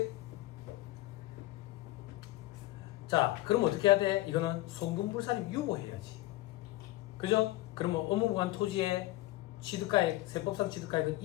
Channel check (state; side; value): quieter; right; 18.1 dB